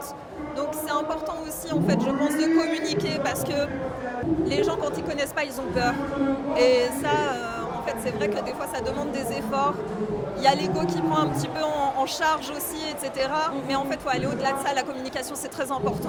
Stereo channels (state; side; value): identical; both; correlation 1.00